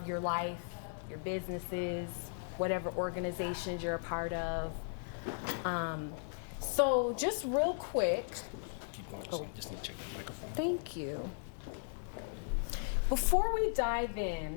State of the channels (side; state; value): right; silent; 53 dB below the other